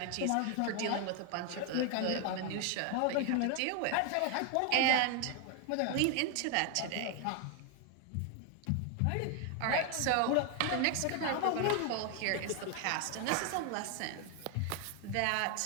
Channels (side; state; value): both; different; correlation 0.01